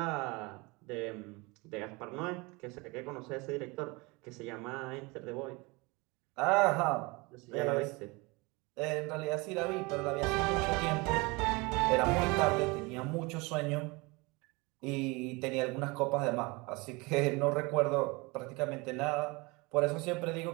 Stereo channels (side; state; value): left; quieter; 25.9 dB